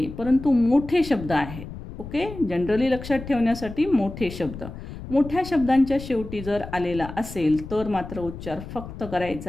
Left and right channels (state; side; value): noise; left; rumble, 12 dB below the sound